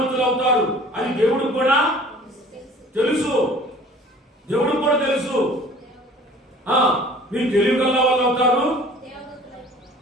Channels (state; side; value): normal; both; correlation 0.48